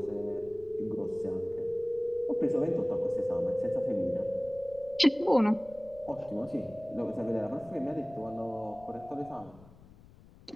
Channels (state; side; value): noise; left; rumble, 22 dB below the sound